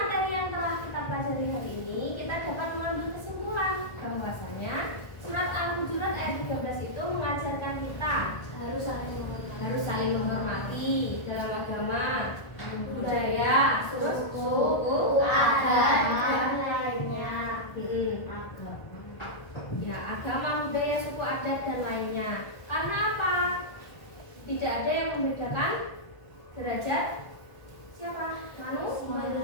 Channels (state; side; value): late; right; 1.4 ms